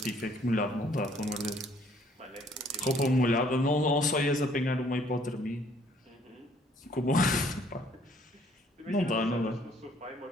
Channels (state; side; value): normal; both; correlation 0.61